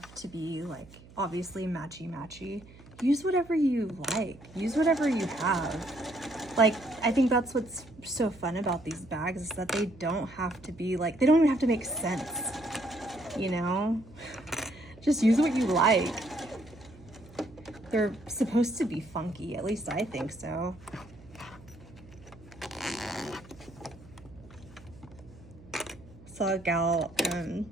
to be like obviously matchy-matchy. Use whatever you like. Use whatever you have. Like, I think that's what's so fun about these bags is that they don't have to be like, they don't even have to make sense, you know? Just use what you like. They're supposed to be funky, at least I think so. Saw a gal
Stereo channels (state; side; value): noise; right; hum, 21 dB below the sound